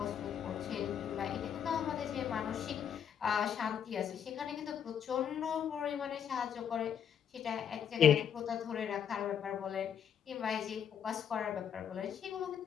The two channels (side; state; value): right; quieter; 8.5 dB